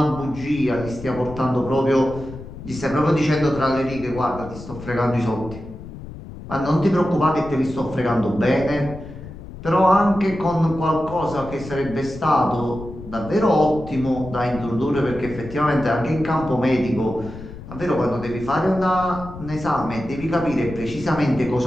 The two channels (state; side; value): noise; left; rumble, 13 dB below the sound